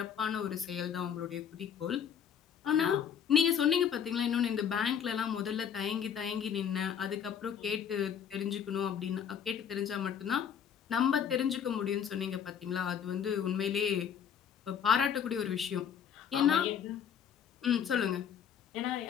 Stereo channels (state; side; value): quieter; right; 8.2 dB